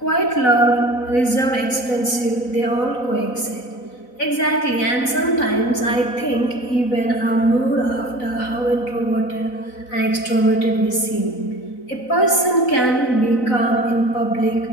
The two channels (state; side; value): late; right; 4.0 ms